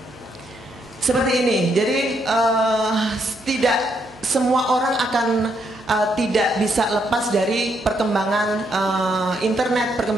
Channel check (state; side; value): noise; right; hum, 28 dB below the sound